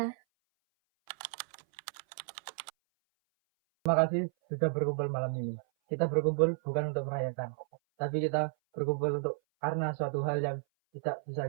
Terima kasih sudah berkumpul malam ini. Kita berkumpul bukan untuk merayakan, tapi kita berkumpul karena suatu hal yang tidak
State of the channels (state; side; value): silent; left; 56 dB below the other